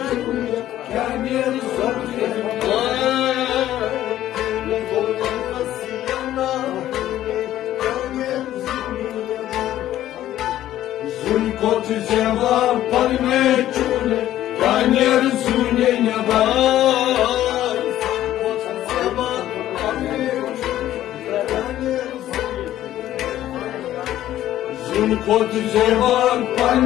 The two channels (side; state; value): right; quieter; 13.1 dB